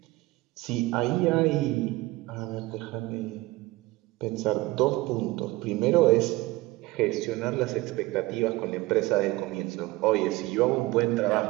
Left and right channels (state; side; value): quieter; left; 20.4 dB